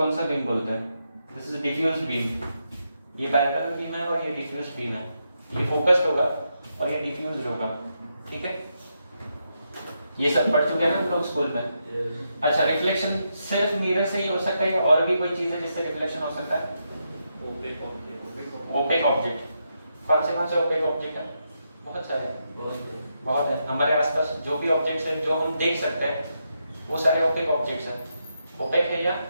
सा बीम बोलते हैं? दिस इज डिफ्यूज बीम, ये पैरेलल बीम है और ये डिफ्यूज बीम है, ये फोकस्ड होगा और ये डिफ्यूज होगा, ठीक है। ये सब पढ़ चुके हैं ना हम लोग स्कूल में। अच्छा, रिफ्लेक्शन सिर्फ मिरर से ही हो सकता है या और भी कोई चीज है जिससे रिफ्लेक्शन हो सकता है? Opaque object. कौन से ओपेक ऑब्जेक्ट है? बहुत सारे, बहुत है। हमारे आसपास जो भी ऑब्जेक्ट्स हैं जो हम देख सकते हैं वो सारे ओपेक ऑब्जेक्ट्स हैं। ओपेक है या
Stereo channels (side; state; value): both; inverted; correlation -0.82